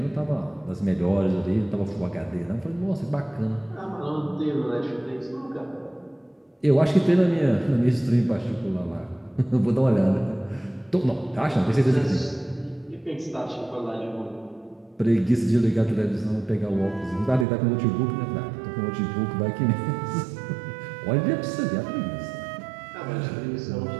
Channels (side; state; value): left; drops out; at 17.4 s